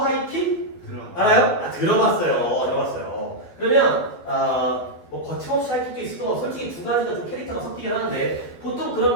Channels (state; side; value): late; right; 12 ms